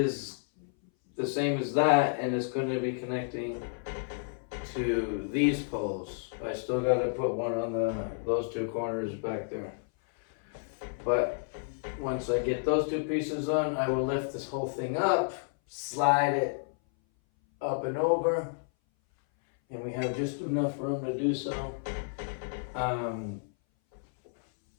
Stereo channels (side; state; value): right; silent; 57 dB below the other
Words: the same as that, and it's going to be connecting to these poles. I still got to put one on those two corners back there. But once I get those two pieces on, I will lift this whole thing up, slide it up and over, and we have just enough room to do so.